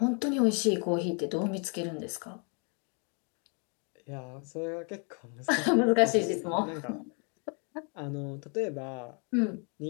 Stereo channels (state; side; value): quieter; right; 38.2 dB